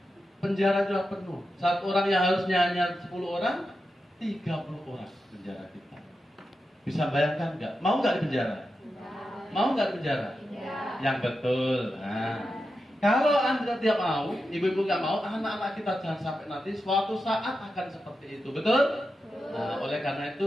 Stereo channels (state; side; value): normal; both; correlation 0.89